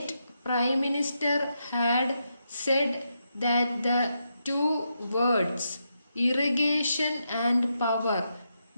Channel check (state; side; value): inverted; both; correlation -0.83